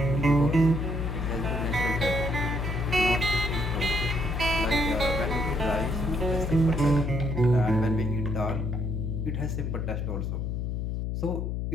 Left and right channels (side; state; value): left; noise; hum, 2 dB below the sound